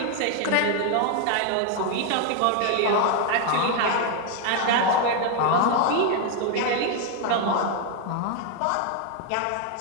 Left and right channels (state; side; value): different; both; correlation 0.00